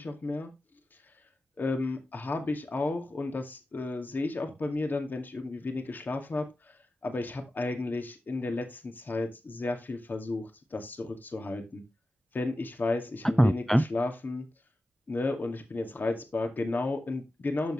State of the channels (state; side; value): normal; both; correlation 0.93